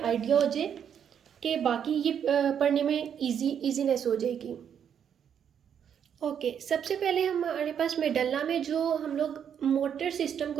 आइडिया हो जाए कि बाकी ये पढ़ने में इजीनेस हो जाएगी। ओके, सबसे पहले हमारे पास मेडल्ला में जो हम लोग मोटर सिस्टम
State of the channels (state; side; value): quieter; left; 8.4 dB